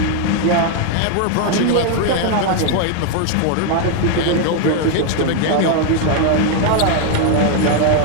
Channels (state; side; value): different; both; correlation 0.01